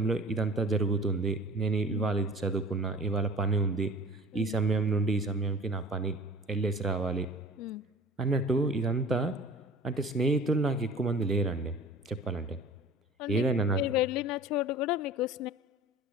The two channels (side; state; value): both; normal; correlation 0.44